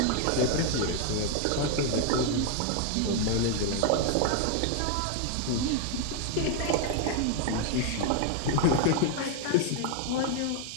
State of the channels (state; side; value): different; both; correlation 0.00